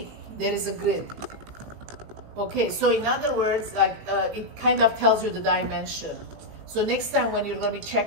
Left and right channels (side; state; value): left; late; 18 ms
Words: there is a grid. Okay, so in other words, like, it kind of tells you the dimension. So next time when you're going to be